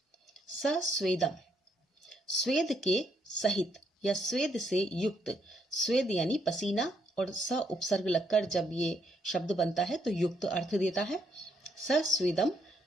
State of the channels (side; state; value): both; normal; correlation 0.73